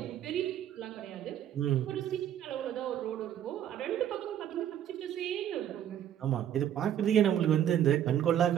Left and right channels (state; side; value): quieter; left; 10.5 dB